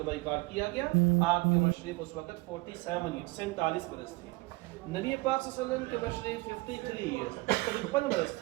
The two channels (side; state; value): left; quieter; 22.9 dB